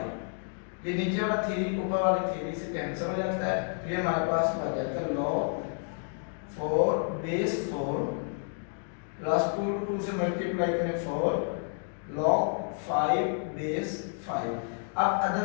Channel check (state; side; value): silent; right; 58 dB below the other